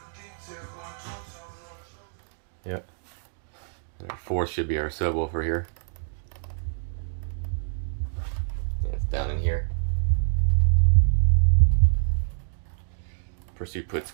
Yep. And our fourth should be our subwoofer here. Yeah, it's down in here. Pursuit puts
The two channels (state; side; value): silent; left; digital silence